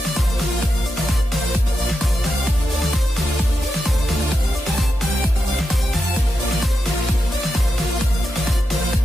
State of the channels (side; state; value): both; normal; correlation 0.87